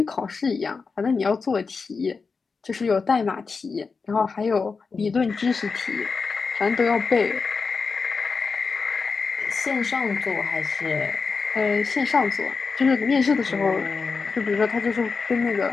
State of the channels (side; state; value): right; quieter; 4.8 dB